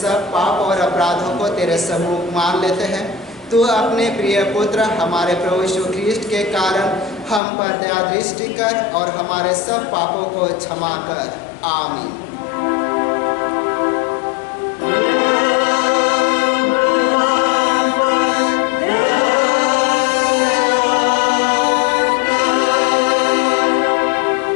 पाप और अपराधों को तेरे सम्मुख मान लेते हैं। तू अपने प्रिय पुत्र हमारे प्रभु यीशु ख्रीष्ट के कारण हम पर दया दृष्टि कर और हमारे सब पापों को क्षमा कर। आमीन।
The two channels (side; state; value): right; drops out; at 7.4 s